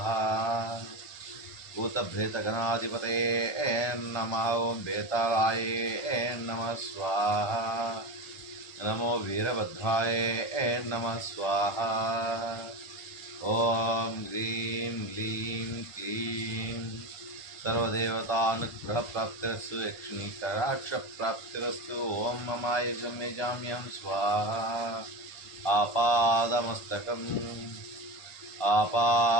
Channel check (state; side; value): late; right; 1.4 ms